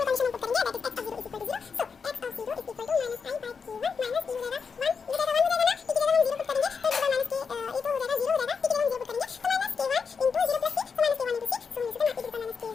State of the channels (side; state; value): right; quieter; 5.7 dB